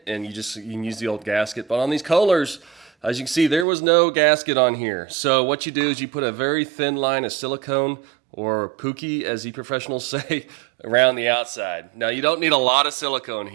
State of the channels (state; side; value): drops out; left; at 3.7 s